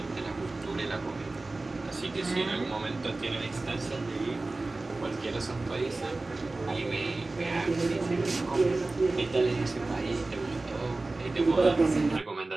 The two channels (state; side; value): quieter; left; 3.2 dB